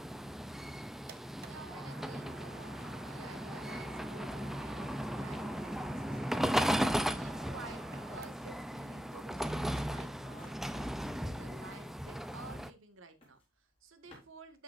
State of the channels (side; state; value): both; normal; correlation 0.90